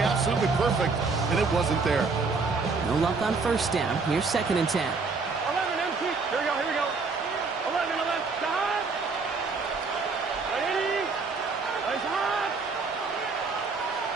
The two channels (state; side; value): quieter; left; 4.4 dB